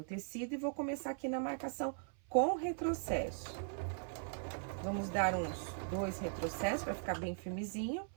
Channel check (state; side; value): silent; left; 51 dB below the other